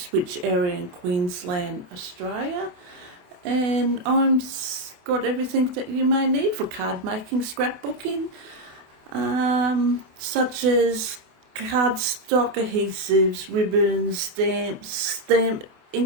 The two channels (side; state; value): left; late; 28 ms